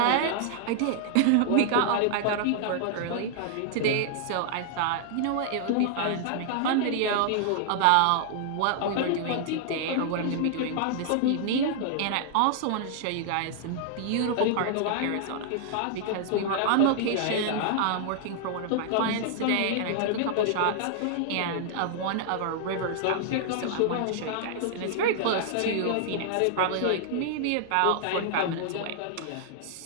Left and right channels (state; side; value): different; both; correlation -0.01